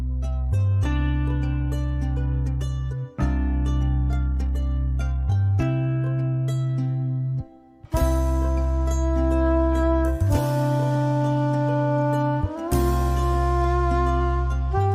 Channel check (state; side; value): identical; both; correlation 1.00